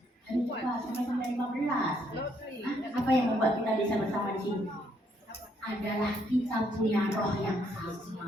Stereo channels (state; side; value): normal; both; correlation 0.71